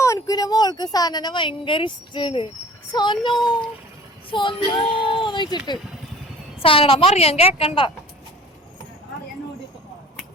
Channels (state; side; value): normal; both; correlation 0.46